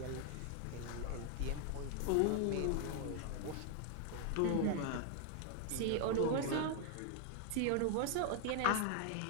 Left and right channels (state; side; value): different; both; correlation 0.00